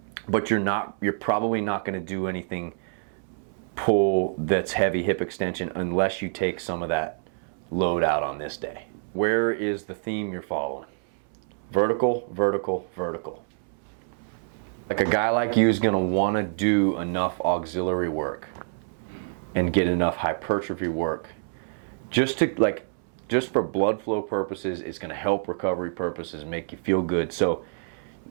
but you're probably not going to do anything pull that's heavy hip extension unless you take some of that load out on this day. Where is the theme you're following? Vertical, vertical, vertical. Like a guy like you is going to want to do enough auxiliary work and get enough hypertrophy work just for blood flow purposes. It's going to help recovery purposes, make you feel good. So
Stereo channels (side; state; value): left; silent; 60 dB below the other